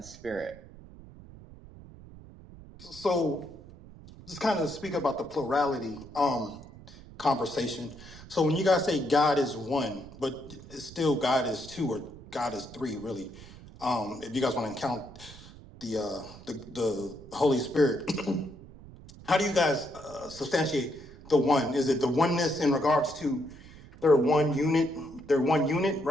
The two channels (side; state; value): right; noise; rumble, 18 dB below the sound